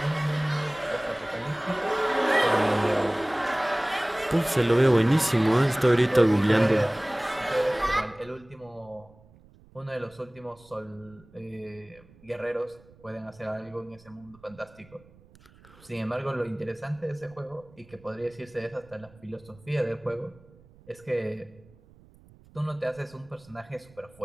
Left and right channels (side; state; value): right; noise; rumble, 26 dB below the sound